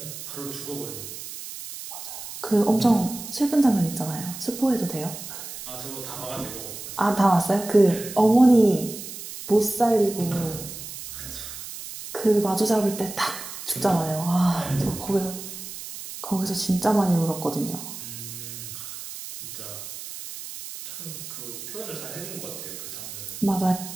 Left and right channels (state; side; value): noise; right; hiss, 10 dB below the sound